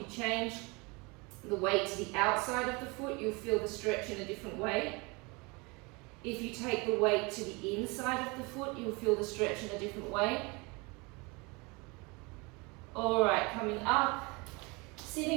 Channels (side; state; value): left; quieter; 27.5 dB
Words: you change the weight to the outside of the foot, you'll feel the stretch in a different way. If you take the weight to the inside of the foot, you'll feel the stretch in a different way. Alright, coming up.